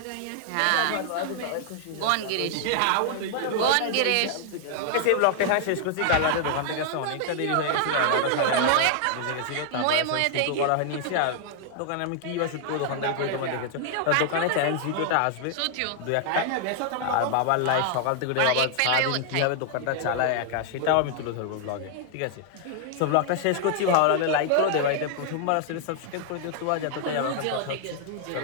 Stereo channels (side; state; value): both; different; correlation 0.00